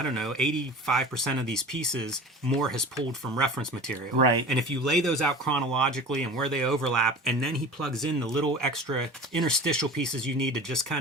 don't know, 85% of these pieces Moore has pulled from reference material. Right. And if you lay those out chronologically and where they overlap, and then he plugs in the little extra interstitial pieces you need to just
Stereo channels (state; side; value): normal; both; correlation 0.37